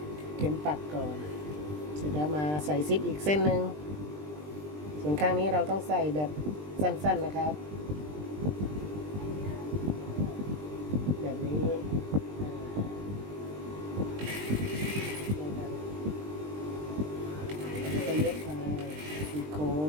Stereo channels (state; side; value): late; left; 20 ms